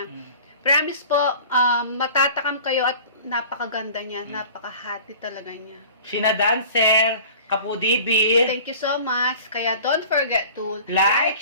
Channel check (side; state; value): both; inverted; correlation -0.43